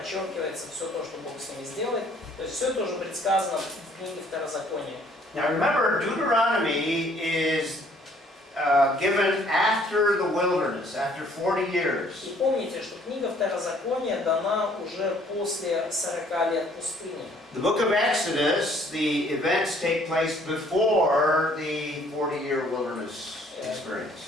все то, что Бог с ними сделает. То есть все это уже предсказано в книге Второзакония. Now remember, Deuteronomy is given after the wilderness, after 40 years. И помните, что книга Второзакония дана уже после 40 лет пустыни. The book of Exodus, the events take place before the 40-year wilderness experience.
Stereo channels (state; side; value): normal; both; correlation 0.60